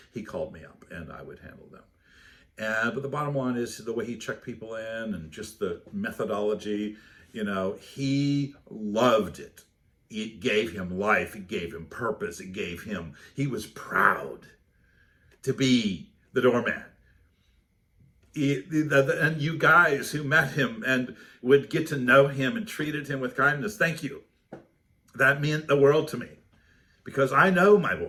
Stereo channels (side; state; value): both; identical; correlation 1.00